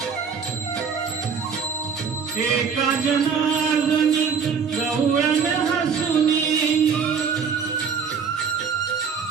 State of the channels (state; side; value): quieter; left; 6.3 dB